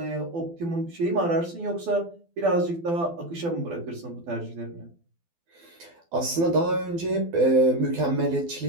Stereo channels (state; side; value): late; left; 12 ms